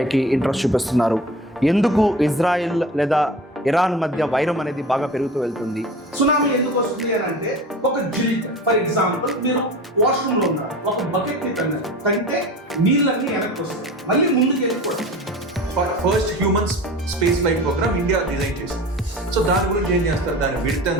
interest చూపిస్తున్నారు? ఎందుకు ఇజ్రాయిల్ లేదా ఇరాన్ మధ్య వైరం అనేది బాగా పెరుగుతూ వెళ్తుంది? సునామీ ఎందుకు వస్తుంది అని అంటే, ఒక జిలిక్ ఫర్ ఎగ్జాంపుల్ మీరు వాష్రూమ్ లో ఉన్నారు, ఒక బకెట్ ని తంటే నీళ్ళన్నీ వెనక్కి వస్తాయి, మళ్ళీ ముందుకు వెళ్ళిపోతాయి. First human space flight program India design చేసింది. సో దాని గురించి ఏం చేస్తారు, దాని విడ్త్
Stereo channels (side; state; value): both; normal; correlation 0.36